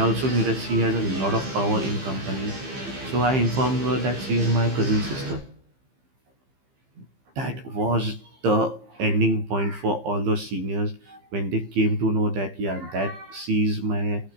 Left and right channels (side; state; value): left; late; 15 ms